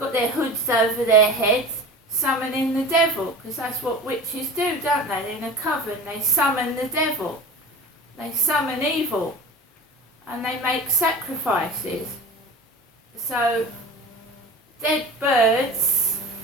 their hoods over their heads, summoning the devil, because that's what witches do, don't they? In a coven, they summon the devil. They summon evil. And they make sacrifices. So, dead birds,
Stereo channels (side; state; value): both; normal; correlation 0.34